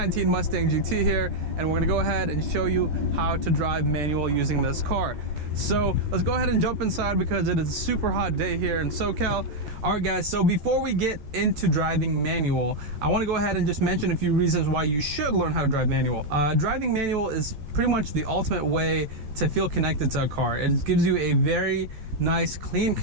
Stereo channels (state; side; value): late; left; 13 ms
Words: Mustang GT here, and we're gonna go ahead and show you how to drive manual using this car. So let's go ahead and jump inside because it is a super hot day here in SoCal. All right guys, so before we get into driving manual, I want to go ahead and just mention a few reasons why you should learn how to drive manual. Driving manual is pretty much the ultimate way to feel connected to a car. It gives you a very nice, clean